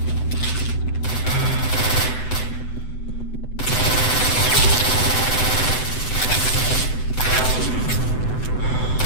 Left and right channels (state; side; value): late; right; 7.9 ms